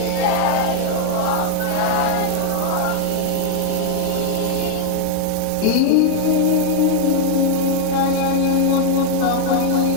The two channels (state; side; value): different; both; correlation 0.00